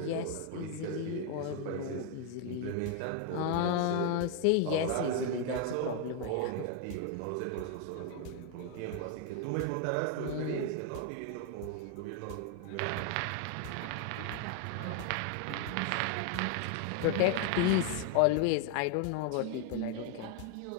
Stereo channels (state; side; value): different; both; correlation 0.01